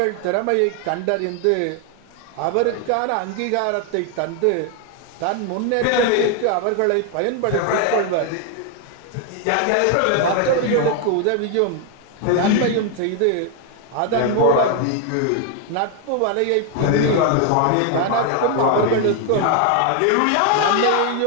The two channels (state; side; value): different; both; correlation 0.00